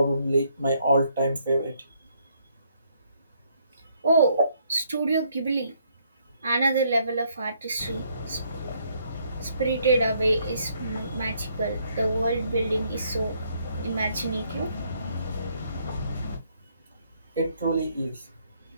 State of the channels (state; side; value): inverted; both; correlation -0.70